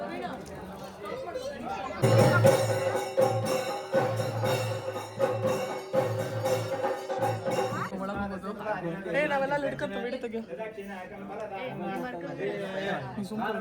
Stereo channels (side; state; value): both; identical; correlation 1.00